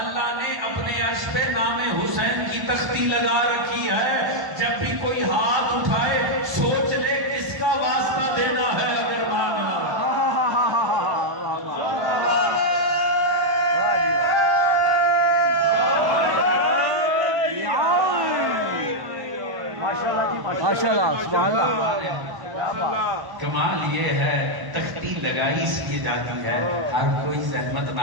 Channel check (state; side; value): late; left; 1.1 ms